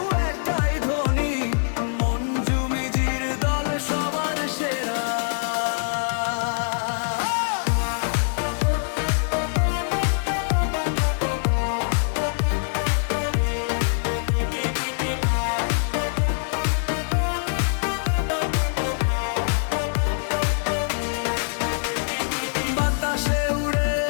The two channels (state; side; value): silent; right; digital silence